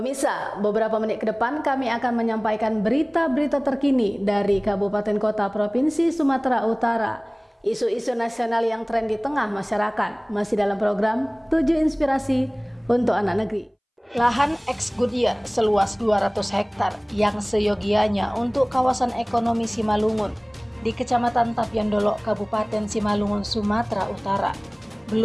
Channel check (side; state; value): both; identical; correlation 1.00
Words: beberapa menit ke depan kami akan menyampaikan berita-berita terkini dari Kabupaten Kota Provinsi Sumatera Utara. Isu-isu nasional yang tren di tengah masyarakat masih dalam program 7 Inspirasi untuk Anak Negeri. Lahan ex Goodyear seluas 200 hektar yang seyogianya untuk kawasan ekonomi Simalungun di Kecamatan Tapyandolo, Kabupaten Simalungun, Sumatera Utara,